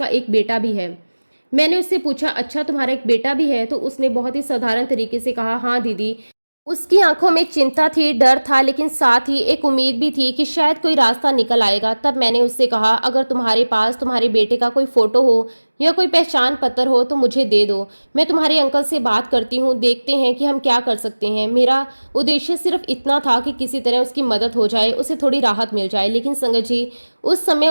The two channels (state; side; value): inverted; both; correlation -1.00